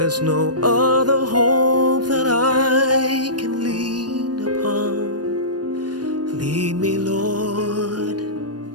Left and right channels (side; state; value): left; late; 0.69 ms